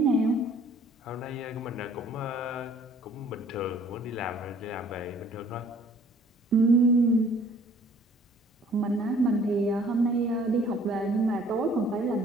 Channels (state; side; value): normal; both; correlation 0.55